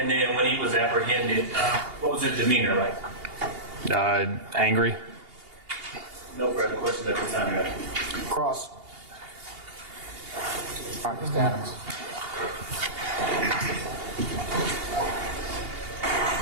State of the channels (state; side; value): late; left; 2.8 ms